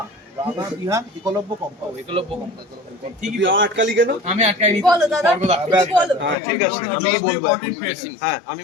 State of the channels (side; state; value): right; drops out; at 6.4 s